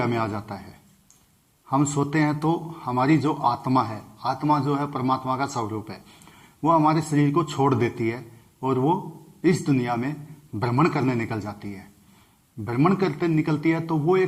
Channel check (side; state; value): both; identical; correlation 1.00